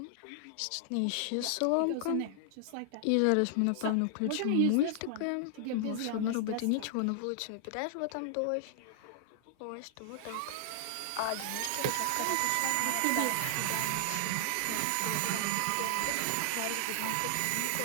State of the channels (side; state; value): both; different; correlation 0.00